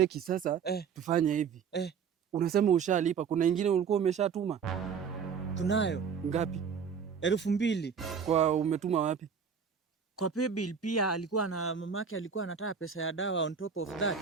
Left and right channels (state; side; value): quieter; left; 6.6 dB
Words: sasa, tufanye hivi. Unasema ushalipa, kuna ingine ulikuwa umeshatuma? Tunayo. Ngapi? 2,000. Kwa umetuma wapi? Kwa pay bill pia alikuwa na mamake alikuwa anataka pesa ya dawa on top of that.